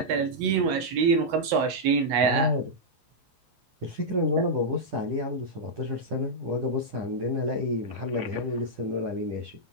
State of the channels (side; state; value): left; late; 10 ms